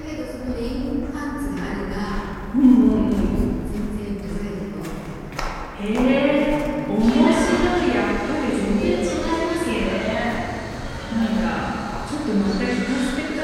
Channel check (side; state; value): both; identical; correlation 1.00